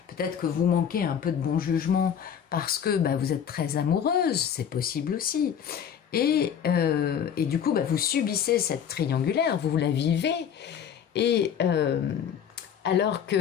Peut-être que vous manquez un peu de bon jugement parce que vous êtes très amoureuse, c'est possible aussi. Et du coup, vous subissez cette triangulaire, vous la vivez. Et alors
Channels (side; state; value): right; quieter; 8.3 dB